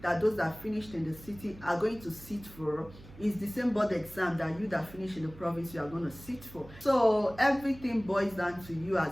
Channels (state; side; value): noise; right; hum, 19 dB below the sound